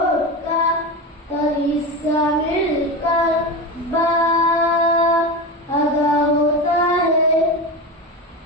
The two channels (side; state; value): both; normal; correlation 0.22